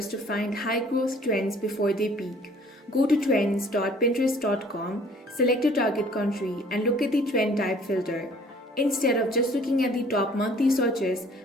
to find high growth trends before they peak. Go to trends.pinterest.com, select your target country, and look at the trend type filter. Instead of just looking at the top monthly searches,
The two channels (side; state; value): both; normal; correlation 0.55